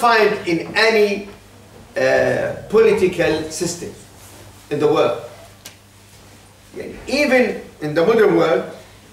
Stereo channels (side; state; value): both; identical; correlation 1.00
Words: in any political system in the world. Even in the modern world,